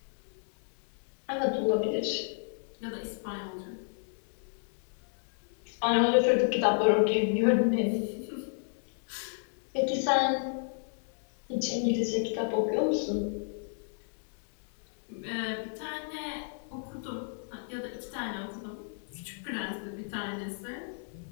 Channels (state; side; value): silent; right; digital silence